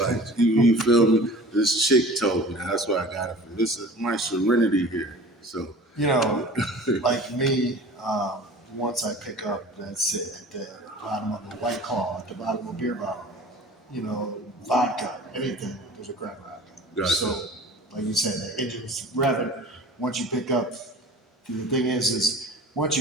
you feel me? This chick told me. That's where I got it from. This is my serenity here. So like me, once I pick up, that's it, at the bottom of a White Claw, at the bottom of a beer bottle, vodka, anything, there's a crack rock. Gotcha. So, like you said, the engine's revving. Once you pick up, the thing is once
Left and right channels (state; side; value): normal; both; correlation 0.42